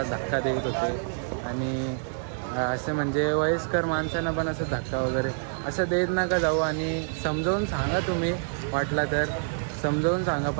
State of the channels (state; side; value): silent; left; digital silence